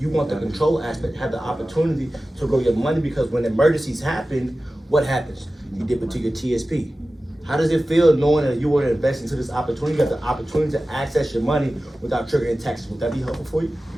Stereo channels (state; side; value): normal; both; correlation 0.95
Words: want the control aspect, have the opportunity to grow your money, because when emergencies happen, what happens? You dip into your TSP. How does it feel knowing that you want to invest into this opportunity? You have the opportunity to access your money without triggering taxes. Would that be helpful for you?